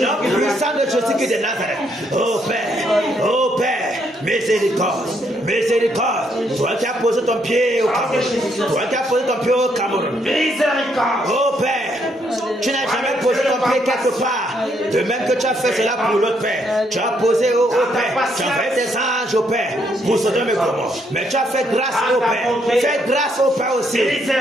puissant de Jésus de Nazareth. Oh Père. Oh Père. Miséricorde. Miséricorde. Toi qui as posé ton pied au Cameroun. Toi qui as posé ton pied au Cameroun. Miséricorde. Oh Père, tu n'as jamais posé ton pied quelque part. De même que tu as fait cela pour l'autre Père. Tu as posé au Père. Tu as fait des anges au Père pour Sodome et Gomorrhe. Mais tu as fait grâce au Père. Fais grâce au Père aussi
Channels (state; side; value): normal; both; correlation 0.73